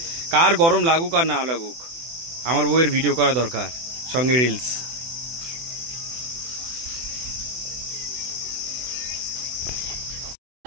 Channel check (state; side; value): late; left; 24 ms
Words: কার গরম লাগুক আর না লাগুক, আমার বউয়ের ভিডিও করা দরকার, সঙ্গে রিলস।